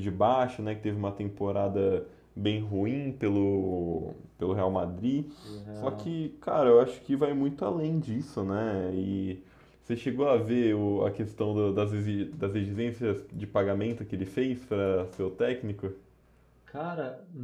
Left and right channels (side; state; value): both; identical; correlation 1.00